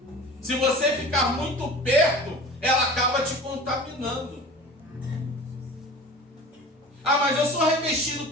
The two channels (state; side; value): normal; both; correlation 0.39